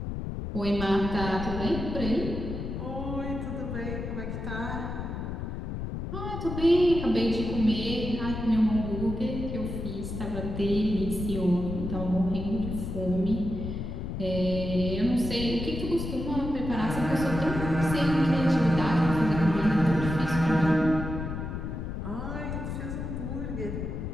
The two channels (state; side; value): noise; left; rumble, 5 dB below the sound